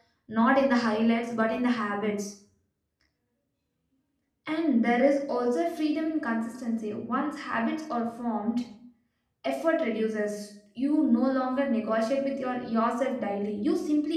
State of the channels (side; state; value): both; identical; correlation 1.00